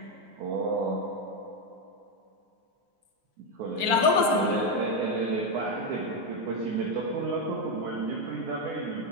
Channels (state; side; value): late; left; 9.6 ms